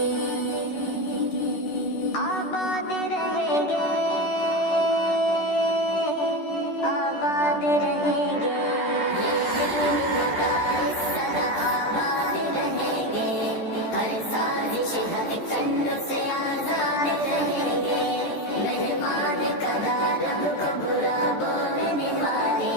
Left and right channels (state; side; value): late; right; 13 ms